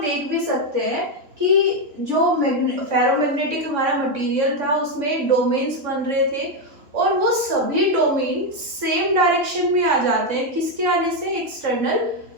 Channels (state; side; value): late; left; 3.4 ms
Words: देख भी सकते हैं कि जो फेरोमैग्नेटिक हमारा मटेरियल था उसमें डोमेन्स बन रहे थे और वो सभी डोमेन सेम डायरेक्शन में आ जाते हैं। किसके आने से? एक्सटर्नल